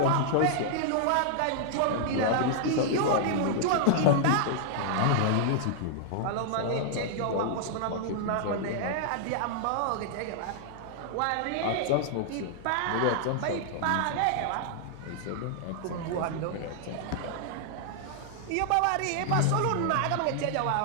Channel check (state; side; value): different; both; correlation -0.01